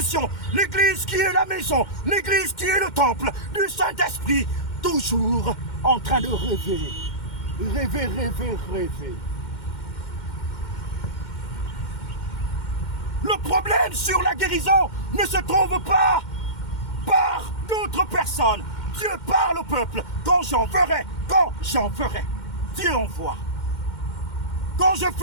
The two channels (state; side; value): late; right; 2.1 ms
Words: L'Église qui est la maison, l'Église qui est le temple du Saint-Esprit, toujours en train de rêver. Rêver, rêver, rêver. Le problème sur la guérison ne se trouve pas par d'autres personnes. Dieu parle au peuple. Quand j'en ferai, Dieu envoie. Quand je